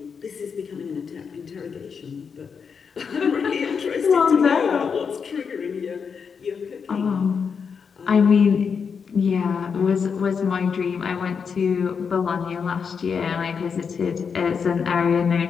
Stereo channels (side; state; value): right; quieter; 6.2 dB